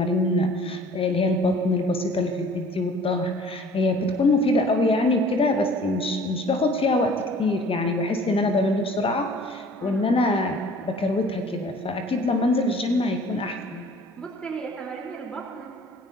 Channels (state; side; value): normal; both; correlation 0.50